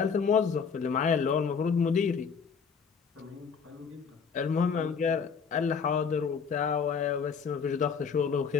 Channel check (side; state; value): right; quieter; 6.0 dB